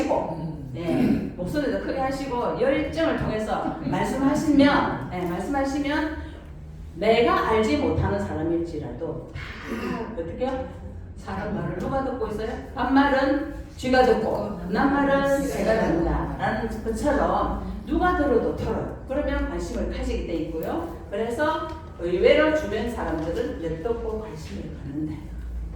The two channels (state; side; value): identical; both; correlation 1.00